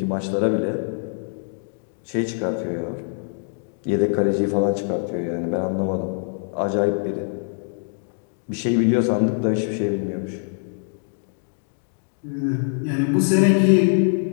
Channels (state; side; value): silent; right; 63 dB below the other